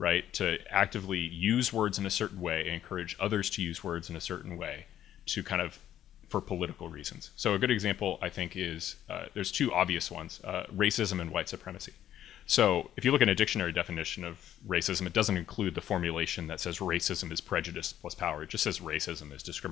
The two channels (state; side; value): quieter; right; 11.4 dB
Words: To actively use words in a certain way, encourage others to use words in a certain way to kind of for political reasons. So a good example, I think, is there's two obvious ones, racism and white supremacy. So if you look at a dictionary definition of racism, it doesn't include the formulation that says racism is prejudice plus power. It just says racism is